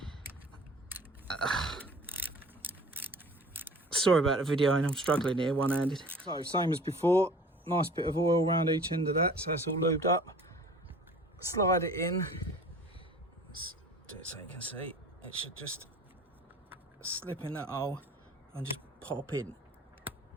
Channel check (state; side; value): normal; both; correlation 0.45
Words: Sorry about the video, and I'm struggling here one-handed. So same as before, nice bit of oil around each end of that, so it's all lubed up. Slide it in. Let's do it so you can see. It should just slip in that hole and just pop in.